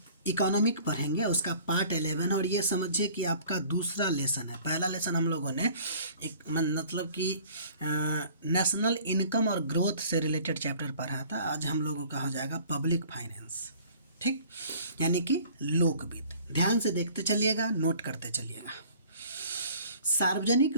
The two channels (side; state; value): both; inverted; correlation -0.51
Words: इकोनॉमिक पढ़ेंगे, उसका पार्ट 11 और ये समझिए कि आपका दूसरा लेसन है। पहला लेसन हम लोगों ने एक मतलब कि नेशनल इनकम और ग्रोथ से रिलेटेड चैप्टर पढ़ा था। आज हम लोगों का हो जाएगा पब्लिक फाइनेंस, ठीक, यानी कि लोक वित्त। ध्यान से देखते चलिएगा, नोट करते चलिएगा। सार्वजनिक